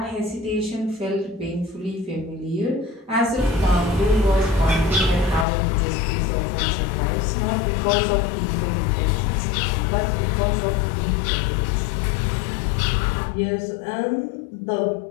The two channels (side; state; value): right; drops out; at 5.5 s